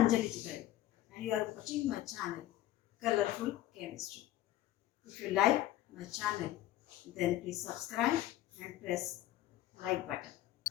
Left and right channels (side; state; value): right; quieter; 14.2 dB